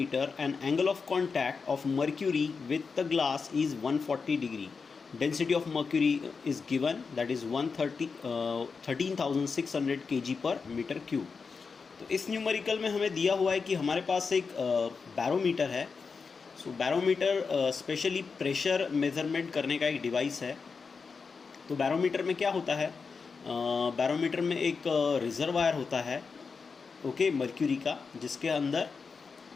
and angle of contact of mercury with the glass is 140 degree. Density of mercury is given, that is 13,600 kg per meter cube. तो इस numerical में हमें दिया हुआ है कि हमारे पास एक बैरोमीटर है. सो बैरोमीटर स्पेशली प्रेशर मेज़रमेंट करने का एक डिवाइस है. तो बैरोमीटर में क्या होता है, बैरोमीटर में एक रिजर्वायर होता है, ओके, मर्क्यूरी का, जिसके अंदर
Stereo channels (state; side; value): quieter; right; 5.1 dB